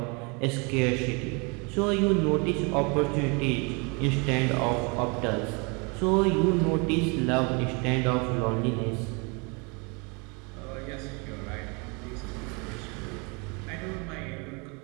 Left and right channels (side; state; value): left; quieter; 31.3 dB